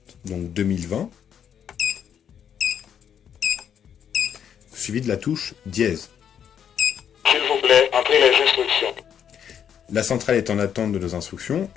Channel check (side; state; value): right; quieter; 8.6 dB